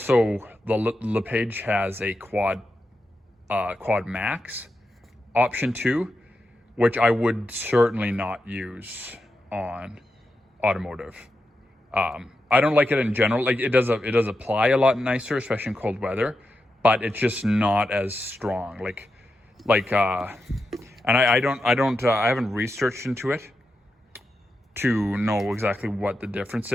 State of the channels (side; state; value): both; normal; correlation 0.88